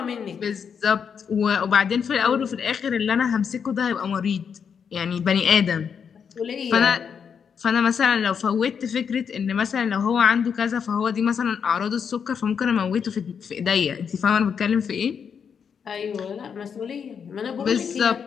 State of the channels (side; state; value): right; quieter; 6.9 dB